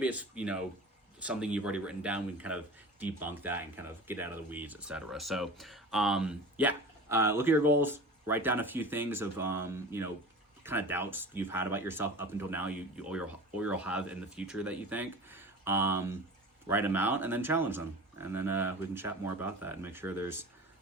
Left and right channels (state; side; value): normal; both; correlation 0.36